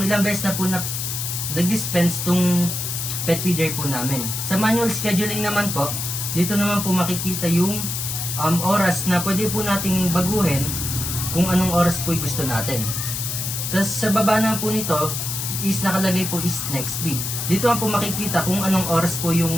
ilang beses na po na nag-dispense itong pet feeder po namin. Sa manual scheduling naman po, dito naman po makikita yung oras na pwede po nating baguhin kung anong oras po gusto natin. Tapos sa baba na po nito is nakalagay po is next feed. Dito po makikita kung anong oras po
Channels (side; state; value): left; noise; hiss, 3 dB below the sound